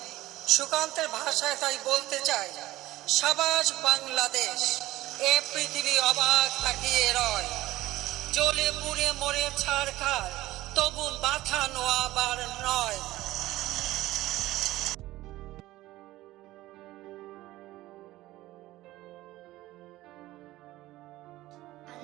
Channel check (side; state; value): left; quieter; 16.8 dB